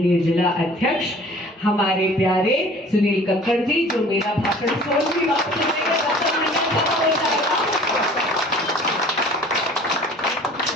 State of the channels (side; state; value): both; normal; correlation 0.49